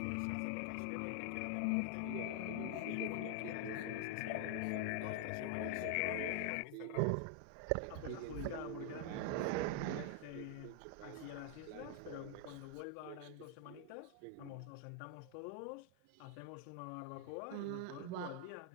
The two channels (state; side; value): different; both; correlation 0.00